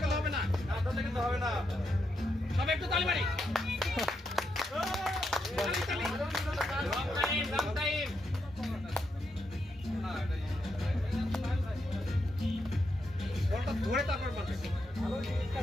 গেলে হবে না। না ধরলে কিন্তু হবে না। সবাই একটু তালি মারি। Long time. বলটা ধরে তারপর মারবে।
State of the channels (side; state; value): both; normal; correlation 0.82